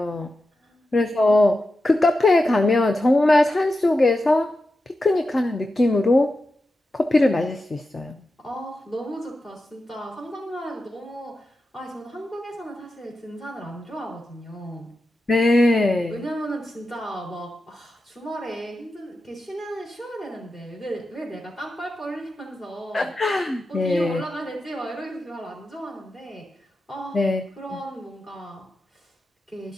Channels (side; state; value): both; normal; correlation 0.90